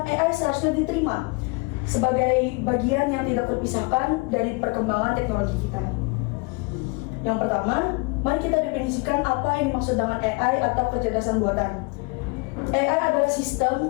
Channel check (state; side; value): quieter; right; 29.2 dB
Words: AI seharusnya diterima sebagai bagian yang tidak terpisahkan dari perkembangan teknologi kita. Yang pertama, mari kita definisikan apa yang dimaksud dengan AI atau kecerdasan buatan. AI adalah